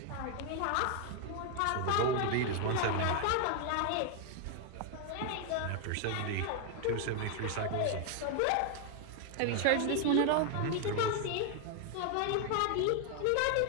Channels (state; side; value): different; both; correlation 0.00